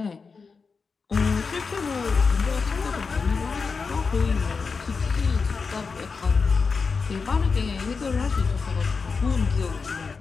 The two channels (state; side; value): quieter; right; 4.9 dB